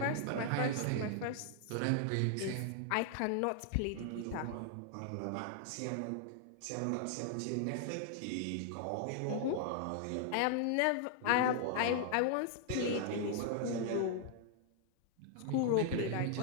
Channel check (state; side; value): different; both; correlation 0.00